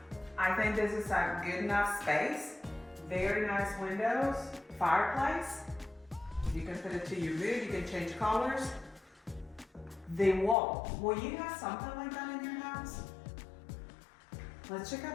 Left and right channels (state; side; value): drops out; right; at 10.6 s